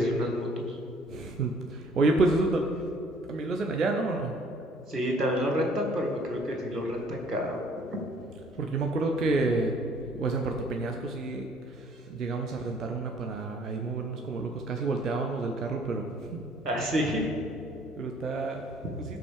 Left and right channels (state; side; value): normal; both; correlation 0.58